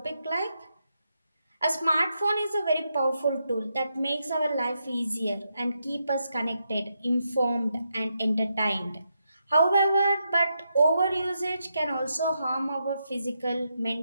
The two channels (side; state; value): both; inverted; correlation -0.83